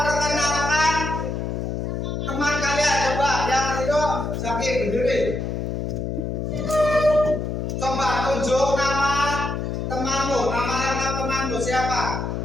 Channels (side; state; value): left; noise; hum, 3 dB below the sound